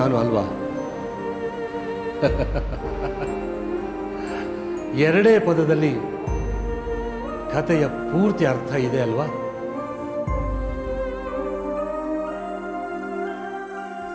ಅಲ್ವಾ? ಎರಡೇ ಪದದಲ್ಲಿ ಕಥೆಯ ಪೂರ್ತಿ ಅರ್ಥ ಇದೆ ಅಲ್ವಾ?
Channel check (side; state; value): both; identical; correlation 1.00